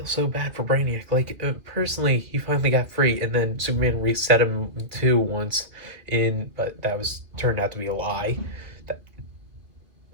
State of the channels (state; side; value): late; left; 2.6 ms